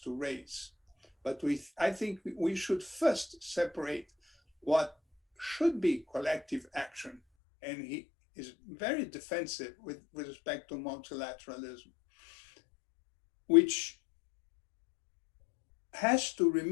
to raise. But I think we should first separate what should be collective action. And he is very defensive with respect to multilateralism, which has to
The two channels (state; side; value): drops out; right; at 7.2 s